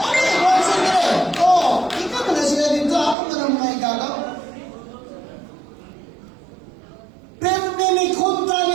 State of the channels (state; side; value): drops out; left; at 3.2 s